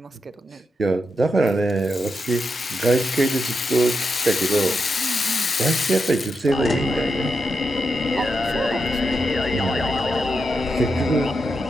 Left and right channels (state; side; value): normal; both; correlation 0.85